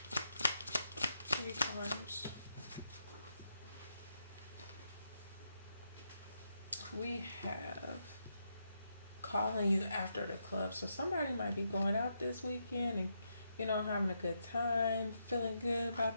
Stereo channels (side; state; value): both; inverted; correlation -0.82